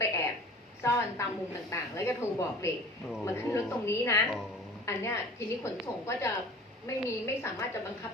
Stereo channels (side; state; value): both; normal; correlation 0.43